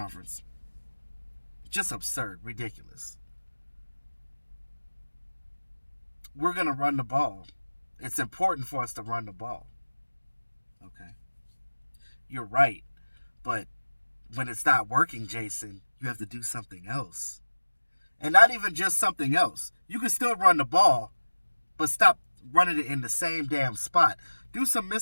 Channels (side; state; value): both; inverted; correlation -1.00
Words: just absurd, ridiculous. We're going to run the ball. It's important for us to run the ball. Okay. You're right. But when it's not working, Jason, you have to do something else. And not even just something else. You can still run the ball, but stop running it in the same damn spot. Do some